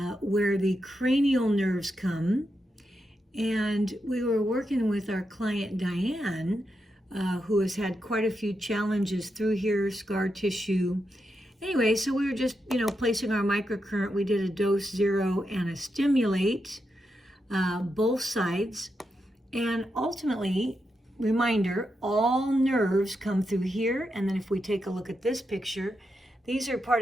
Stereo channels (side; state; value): both; normal; correlation 0.85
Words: where the cranial nerves come, and we were working with our client Diane, who has had quite a few challenges through here, scar tissue. Anyway, so we were just, placing our microcurrent. We did a dose 0 and a stimulate, both sides. And ultimately, reminder, all nerves come through here. And then if we take a look at this picture, these are